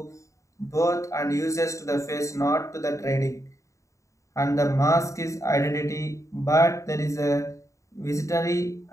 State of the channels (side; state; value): right; late; 0.15 ms